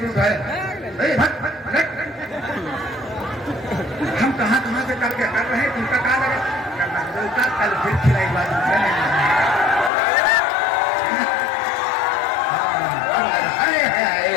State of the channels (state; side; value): drops out; right; at 9.9 s